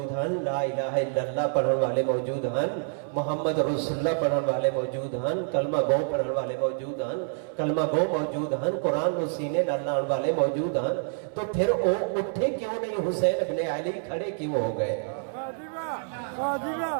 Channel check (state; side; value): silent; left; 60 dB below the other